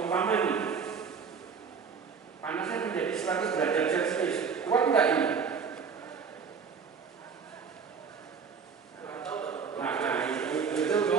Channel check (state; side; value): quieter; left; 6.0 dB